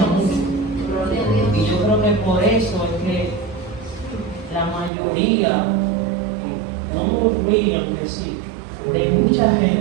mucho. Y yo creo que por eso es que la mayoría, no murmuran que sí, de mucha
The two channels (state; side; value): drops out; left; at 4.9 s